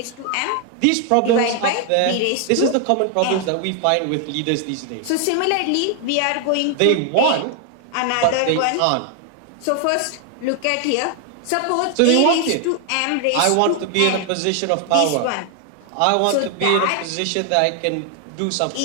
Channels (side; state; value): both; different; correlation 0.00